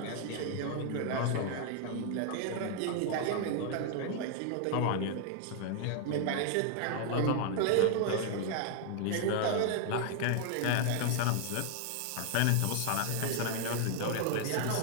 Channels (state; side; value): different; both; correlation 0.00